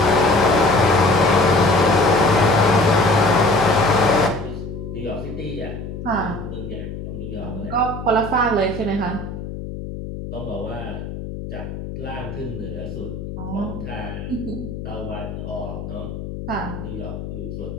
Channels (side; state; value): left; noise; hum, 8 dB below the sound